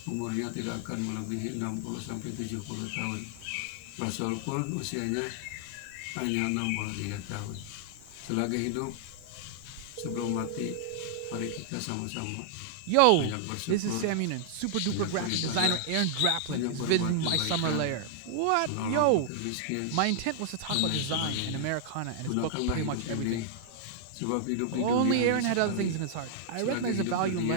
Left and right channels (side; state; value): both; different; correlation -0.01